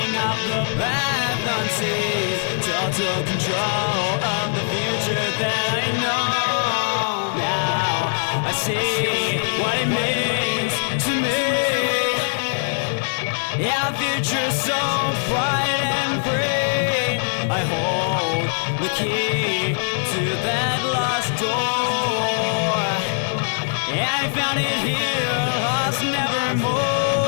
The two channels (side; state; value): right; silent; digital silence